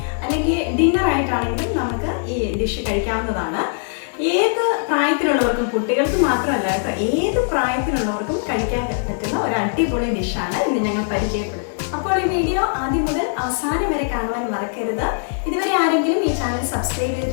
അല്ലെങ്കിൽ ഡിന്നറായിട്ടാണെങ്കിലും നമുക്ക് ഈ ഡിഷ് കഴിക്കാവുന്നതാണ്. ഏത് പ്രായത്തിലുള്ളവർക്കും, കുട്ടികൾക്ക് മാത്രമല്ല കേട്ടോ, ഏത് പ്രായത്തിലുള്ളവർക്കും കഴിക്കാൻ പറ്റുന്ന ഒരു അടിപൊളി ഡിഷാണ് ഇന്ന് ഞങ്ങൾ പരിചയപ്പെടുത്തുന്നത്. അപ്പോൾ ഈ വീഡിയോ ആദ്യം മുതൽ അവസാനം വരെ കാണുവാൻ മറക്കരുത്. ഇതുവരെ ആരെങ്കിലും ഈ ചാനൽ സബ്സ്ക്രൈബ്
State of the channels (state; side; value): silent; right; digital silence